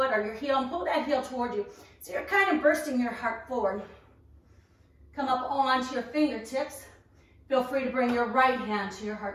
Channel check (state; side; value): identical; both; correlation 1.00